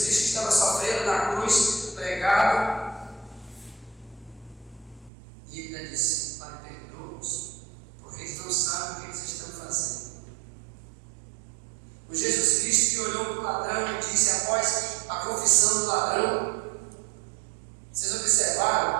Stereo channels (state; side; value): drops out; left; at 5.1 s